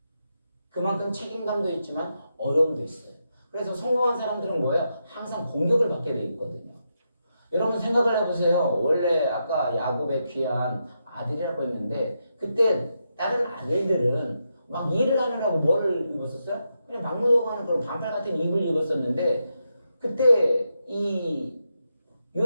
그만큼 책임감도 있지만 어려움도 있어요. 그래서 성공한 사람들은 뭐예요? 항상 공격을 받게 돼 있거든요. 여러분 생각을 해보세요. 원래 아까 야곱의 귀한 아들이라고 했는데 그때 다른 아들들은 막 일을 하느라고 뭐를 입었었어요? 그냥 막무가내로 그런 반팔 같은 입을 입었었는데 그때 이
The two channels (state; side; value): inverted; both; correlation -0.84